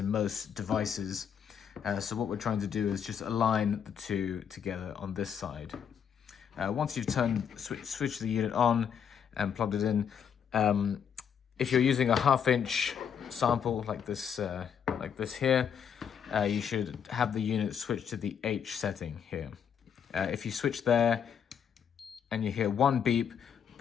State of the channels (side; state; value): right; quieter; 7.9 dB